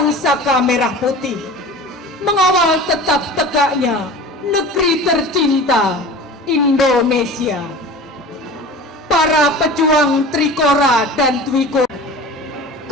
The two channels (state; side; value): normal; both; correlation 0.37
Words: saka merah putih, mengawal tetap tegaknya negeri tercinta Indonesia. para pejuang Trikora dan Dwikora.